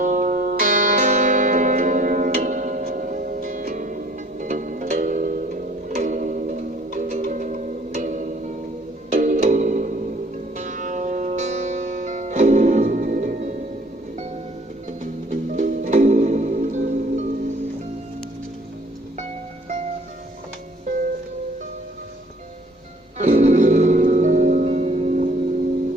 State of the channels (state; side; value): normal; both; correlation 0.57